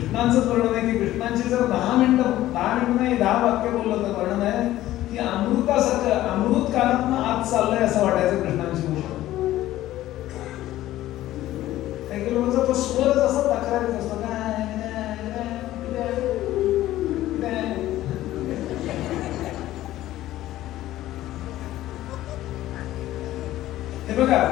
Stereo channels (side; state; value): right; quieter; 14.7 dB